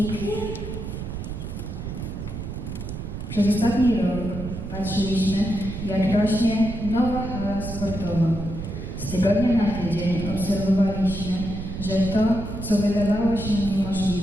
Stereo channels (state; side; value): noise; right; rumble, 7 dB below the sound